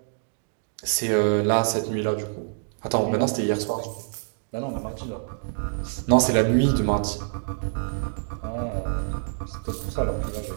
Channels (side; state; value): left; silent; 61 dB below the other